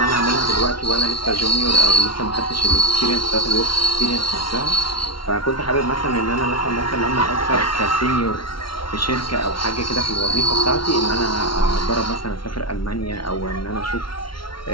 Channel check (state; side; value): late; right; 0.74 ms